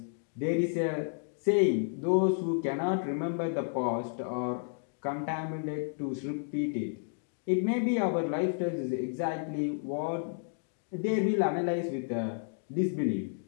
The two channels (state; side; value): silent; right; digital silence